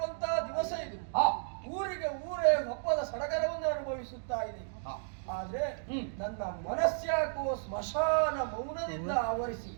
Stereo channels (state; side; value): silent; left; digital silence